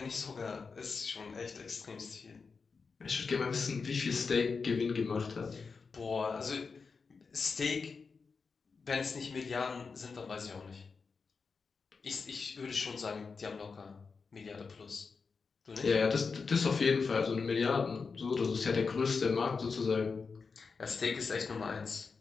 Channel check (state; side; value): quieter; right; 4.9 dB